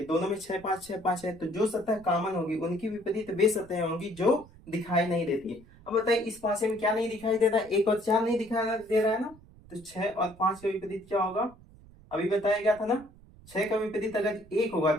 दोनों में छह पांच है, तो जो सतह कॉमन होगी उनकी विपरीत वे सतहें होंगी जो दिखाई नहीं देती है। अब बताइए इस पासे में क्या नहीं दिखाई दे रहा है, एक और चार नहीं दिखाई दे रहा है ना, तो छह और पांच का विपरीत क्या होगा, अभी बताया गया था ना। छह का विपरीत अगर एक होगा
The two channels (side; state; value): right; noise; rumble, 23 dB below the sound